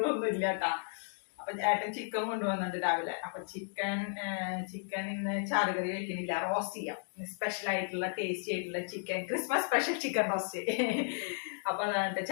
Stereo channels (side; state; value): right; silent; 55 dB below the other